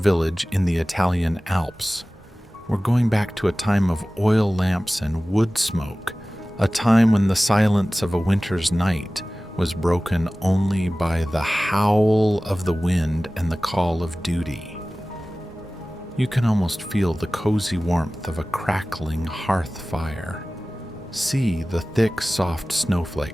in the Italian Alps. We're going back to a time of oil lamps and wood smoke, a time when the silence of a winter's night was broken only by the howl of the wind and the call of duty. You can almost feel the cozy warmth of a crackling hearth fire. See the thick, soft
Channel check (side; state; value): both; normal; correlation 0.97